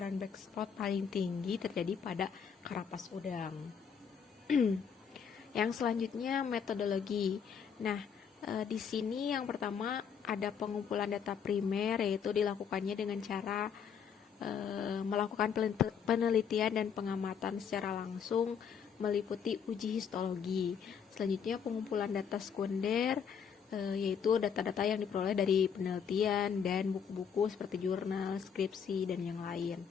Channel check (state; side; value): quieter; right; 7.2 dB